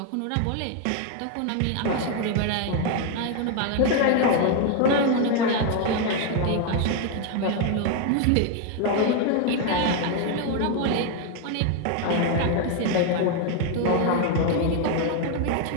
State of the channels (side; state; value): both; different; correlation 0.01